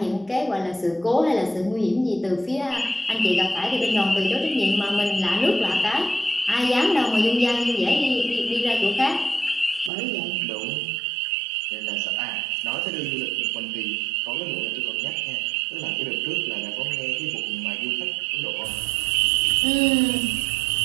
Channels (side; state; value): left; drops out; at 9.9 s